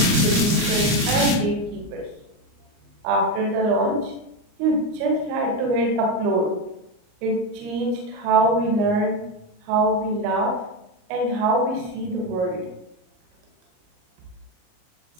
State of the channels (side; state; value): left; late; 38 ms